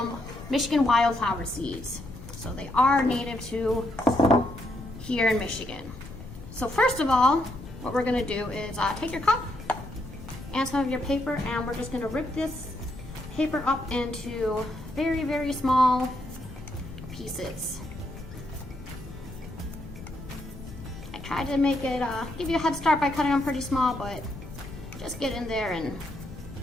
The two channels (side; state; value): left; noise; rumble, 14 dB below the sound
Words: Michigan wildflower seeds. So they are native to here in Michigan. So first of all, what we're going to do is take your cup and some of your paper, and we're just going to rip this paper up into very, very small pieces. I tried to make it give you a head start by cutting them pretty small, but just get in there and